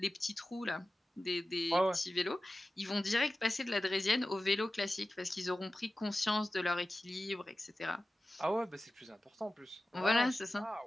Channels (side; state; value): both; normal; correlation 0.95